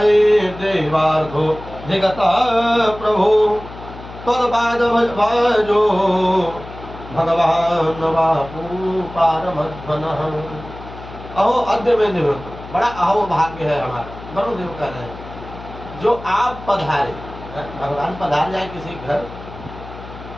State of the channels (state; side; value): noise; left; hum, 15 dB below the sound